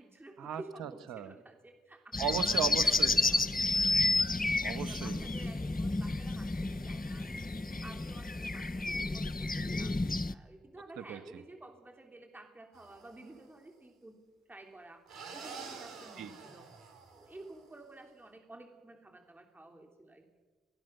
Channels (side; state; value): both; normal; correlation 0.76